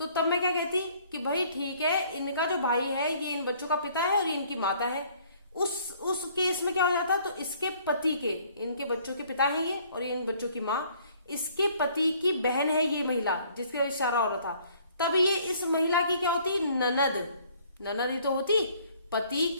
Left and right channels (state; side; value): inverted; both; correlation -0.59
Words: तब मैं क्या कहती कि भाई ठीक है, इनका जो भाई है ये इन बच्चों का पिता है और ये इनकी माता है। उस केस में क्या हो जाता? तो इसके पति के, इनके बच्चों के पिता है ये, और ये इन बच्चों की माँ, इसके पति की बहन है ये महिला जिसका इशारा हो रहा था। तब ये इस महिला की क्या होती? ननद। ननद ही तो होती, पति